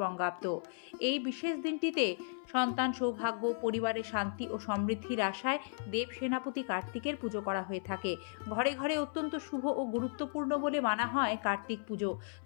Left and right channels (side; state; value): right; silent; 54 dB below the other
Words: বঙ্গাব্দ। এই বিশেষ দিনটিতে সন্তান সৌভাগ্য, পরিবারের শান্তি ও সমৃদ্ধির আশায় দেব সেনাপতি কার্তিকের পুজো করা হয়ে থাকে। ঘরে ঘরে অত্যন্ত শুভ ও গুরুত্বপূর্ণ বলে মানা হয় কার্তিক পুজো।